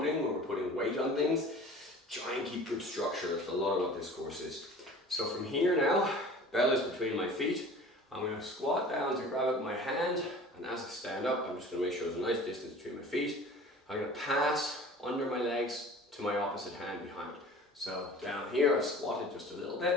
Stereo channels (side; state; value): both; normal; correlation 0.43